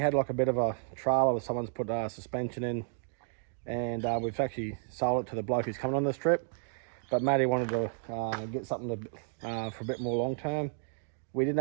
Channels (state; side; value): silent; left; digital silence